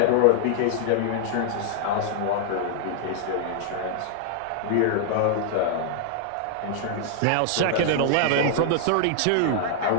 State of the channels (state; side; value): different; both; correlation -0.01